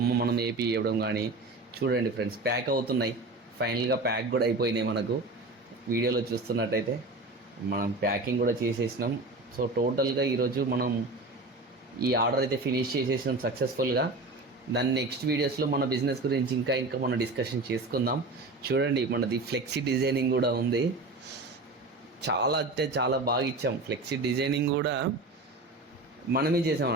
మనం ఏపీ ఇవ్వడం కానీ. చూడండి ఫ్రెండ్స్, ప్యాక్ అవుతున్నాయి. ఫైనల్గా ప్యాక్ కూడా అయిపోయినాయి. మనకు వీడియోలో చూస్తున్నట్టయితే మనం ప్యాకింగ్ కూడా చేసేసినాం. సో టోటల్గా ఈరోజు మనం ఈ ఆర్డర్ అయితే ఫినిష్ చేసేసినాం సక్సెస్ఫుల్గా. దాని నెక్స్ట్ వీడియోస్లో మన బిజినెస్ గురించి ఇంకా మనం డిస్కషన్ చేసుకుందాం. చూడండి మనది ఫ్లెక్సీ డిజైనింగ్ కూడా ఉంది. చాలా అంటే చాలా బాగా ఇచ్చాం. ఫ్లెక్సీ డిజైనింగ్ కూడా మనమే చేసాం.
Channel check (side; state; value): left; quieter; 3.1 dB